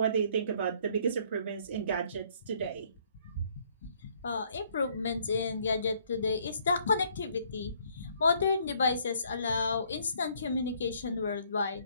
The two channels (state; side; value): inverted; both; correlation -0.64